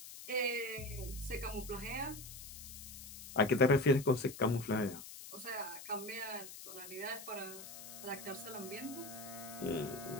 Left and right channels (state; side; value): noise; left; hiss, 12 dB below the sound